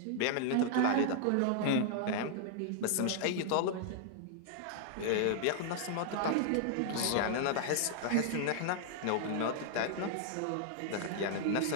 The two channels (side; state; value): both; different; correlation -0.01